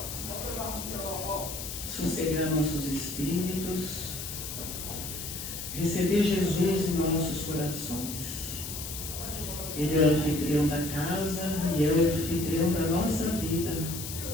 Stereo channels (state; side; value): noise; left; hiss, 7 dB below the sound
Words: Sossegar nossos espíritos. Receber Jesus em nossos corações. Ele é o anfitrião da casa e é o anfitrião da nossa vida,